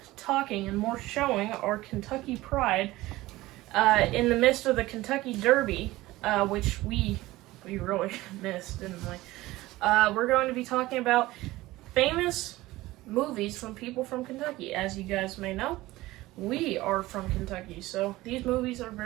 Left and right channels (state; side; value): quieter; left; 18.2 dB